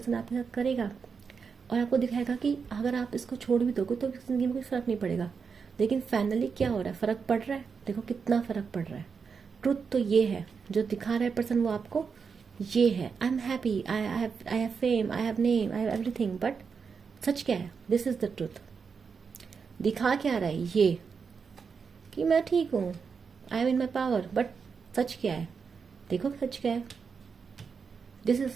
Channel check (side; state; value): left; quieter; 5.7 dB